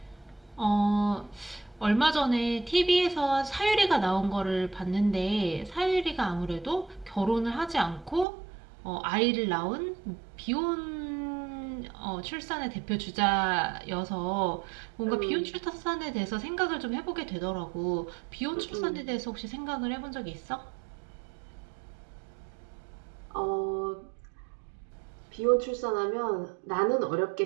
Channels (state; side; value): drops out; left; at 8.2 s